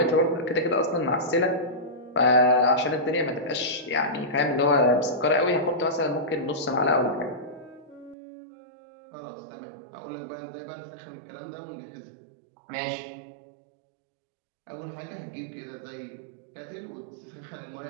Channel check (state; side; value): drops out; left; at 8.2 s